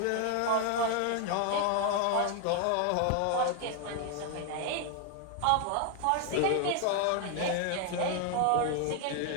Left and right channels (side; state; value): both; different; correlation 0.00